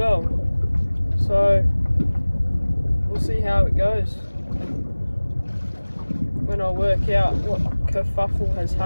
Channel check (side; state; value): both; inverted; correlation -1.00